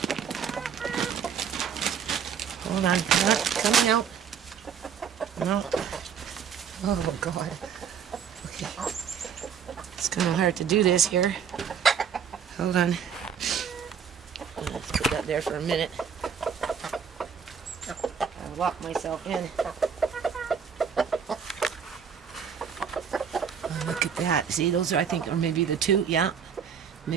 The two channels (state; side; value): quieter; left; 7.3 dB